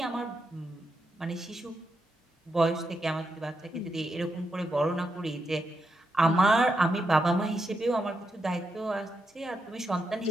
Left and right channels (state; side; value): normal; both; correlation 0.84